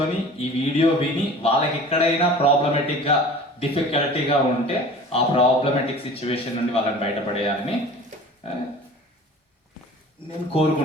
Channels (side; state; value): both; normal; correlation 0.42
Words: ఈ వీడియో విని వాళ్ళకి ఎక్కడైనా ప్రాబ్లమేటిక్గా డిఫికల్టీగా ఉంటే ఆ ప్రాబ్లమేటిక్ సిచ్యువేషన్ నుండి వాళ్ళని బయటపడేయాలని నేను